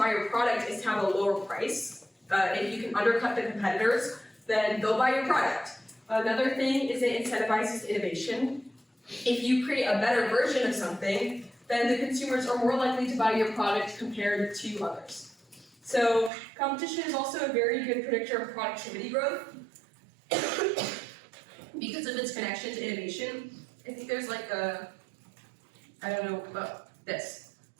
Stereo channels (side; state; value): left; drops out; at 16.3 s